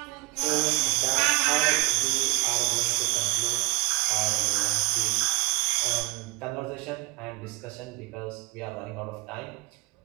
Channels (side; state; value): left; quieter; 23.9 dB